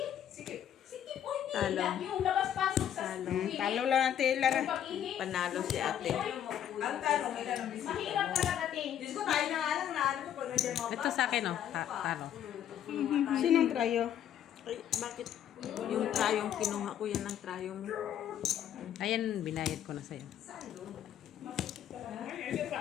Sige, oy, Talo. yung labas-pasok sa school. Talo lang natin, Lara. Pag-ihi. Panalo si ate. Ang tanong, ilan ang bisita? Mahirap talaga, ting. Diyos ko, tayo na nga lang na ano ko pag nandiyan mga Ito sa akin, oh. Talo. Sinong trayo? Ay, bakit? Yung trayong kinuha ko, yan ang trayo mo. Ayan, binayad ko na sa'yo.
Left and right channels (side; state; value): right; quieter; 10.1 dB